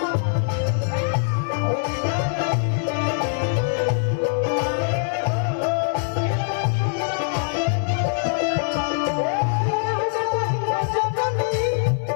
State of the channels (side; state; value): right; silent; 64 dB below the other